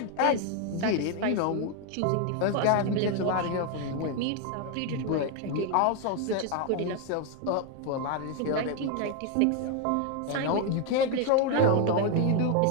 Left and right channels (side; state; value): both; different; correlation 0.01